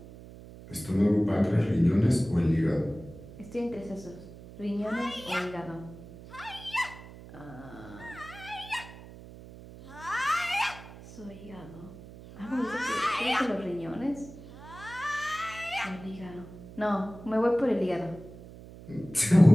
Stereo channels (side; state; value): right; noise; hum, 16 dB below the sound